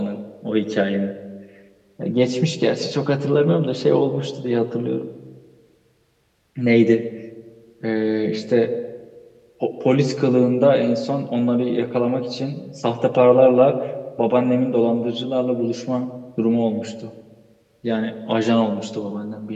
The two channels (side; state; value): both; identical; correlation 1.00